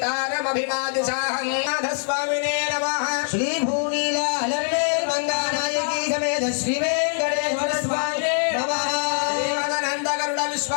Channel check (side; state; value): right; silent; digital silence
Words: नाथस्वामिने नमः श्रीभूनीलालर्वेर्मङ्गानायकी समेत श्रीवेङ्कटेश्वर स्वामिने नमः देवानन्दगरुड